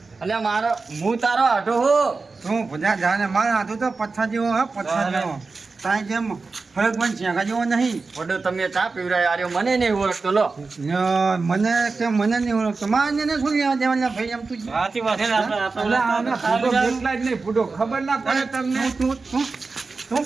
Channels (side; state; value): left; quieter; 4.1 dB